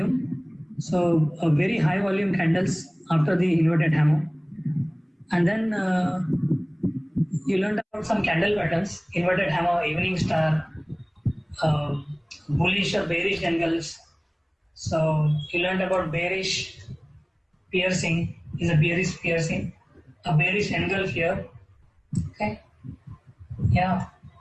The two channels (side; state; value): both; identical; correlation 1.00